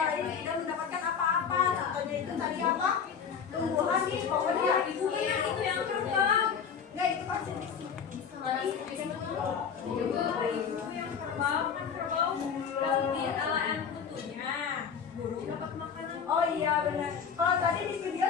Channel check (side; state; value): right; quieter; 6.9 dB